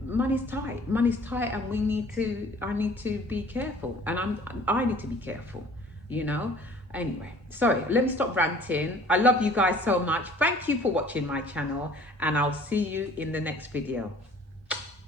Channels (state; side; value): normal; both; correlation 0.52